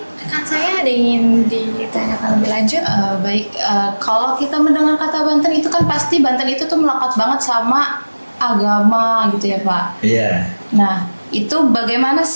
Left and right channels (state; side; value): inverted; both; correlation -1.00